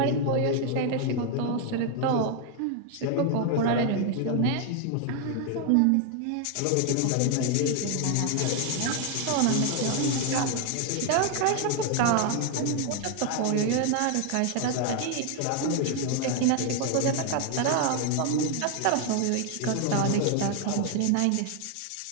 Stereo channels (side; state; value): both; different; correlation 0.01